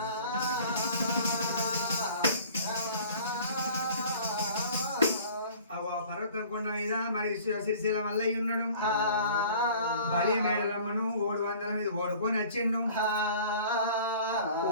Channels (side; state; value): both; inverted; correlation -0.48